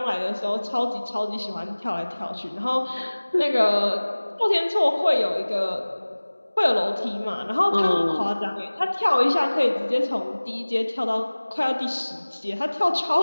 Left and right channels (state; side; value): inverted; both; correlation -1.00